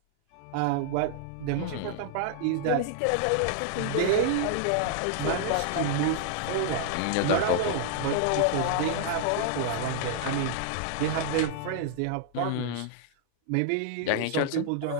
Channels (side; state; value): both; different; correlation -0.01